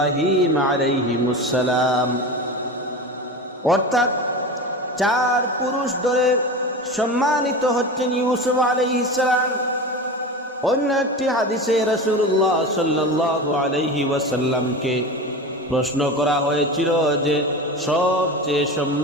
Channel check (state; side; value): normal; both; correlation 0.27